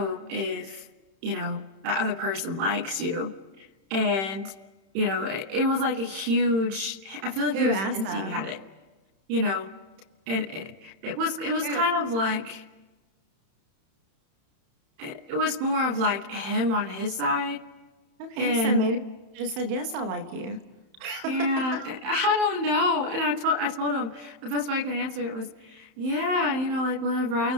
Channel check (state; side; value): late; left; 31 ms